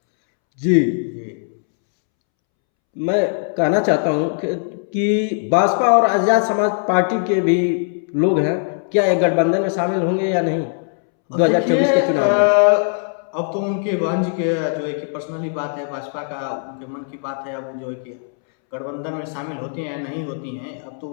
जी, मैं कहना चाहता हूं कि भाजपा और आजाद समाज पार्टी के भी लोग हैं, क्या एक गठबंधन में शामिल होंगे या नहीं 2024 के चुनाव में? अब तो उनके बहन जी के जो है कि पर्सनली बात है, भाजपा का उनके मन की बात है। अब जो है कि गठबंधन में शामिल होती हैं या नहीं होती हैं, अब तो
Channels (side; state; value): right; silent; 66 dB below the other